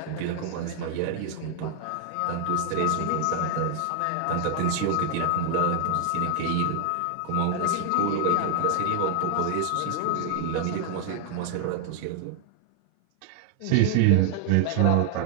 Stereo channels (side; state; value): both; different; correlation 0.00